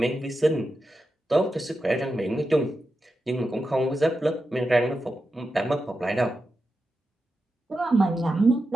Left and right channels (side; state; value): both; normal; correlation 0.90